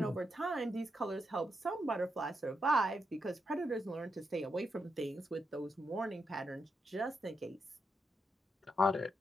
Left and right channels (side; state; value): both; normal; correlation 0.83